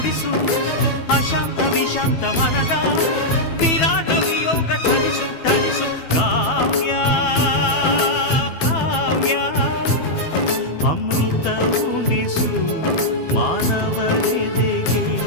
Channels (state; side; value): late; right; 12 ms